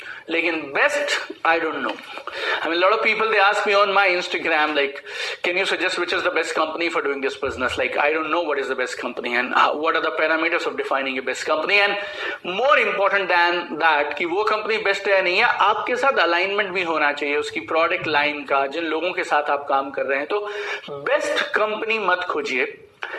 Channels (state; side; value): identical; both; correlation 1.00